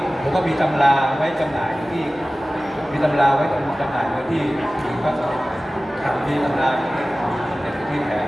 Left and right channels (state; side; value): normal; both; correlation 0.97